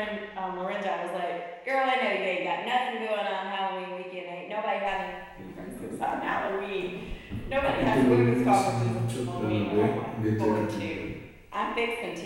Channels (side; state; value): both; identical; correlation 1.00